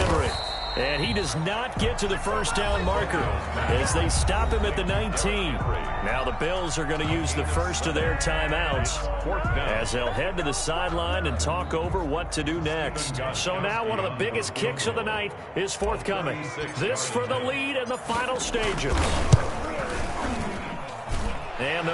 And he does not get to the first down marker as they stop him at the 19. Now the Bills are going to use the first of their timeouts as they'll head to the sideline and talk over what to do next. So now one of the biggest kicks of the night is forthcoming. This for the lead in the final stages. And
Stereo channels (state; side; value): identical; both; correlation 1.00